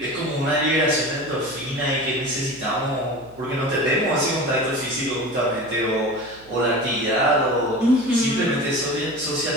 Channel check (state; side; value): noise; left; hum, 25 dB below the sound